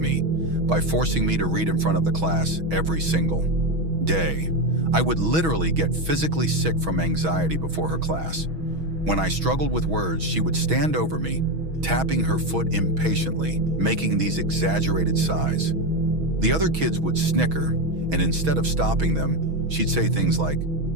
by forcing me to read in front of the class every single day. I would literally get physically sick from anxiety before her class. When I struggled with words, she would stand over me, tapping her foot impatiently, making these exaggerated sighs. The other kids would snicker, and instead of stopping them, she'd say things like,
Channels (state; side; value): late; left; 6.2 ms